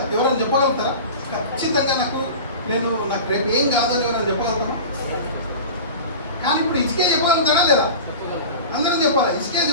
ఎవరైనా చెప్పగలుగుతారా? ఖచ్చితంగా నాకు రేపు ఏం కాదని ఎవరైనా చెప్పగలుగుతారా? కానీ ఇప్పుడు ఇసుకే చెప్పగలుగుతాడా లేదా? అందరూ చెప్పాలి. ఇసుకే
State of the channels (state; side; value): inverted; both; correlation -0.33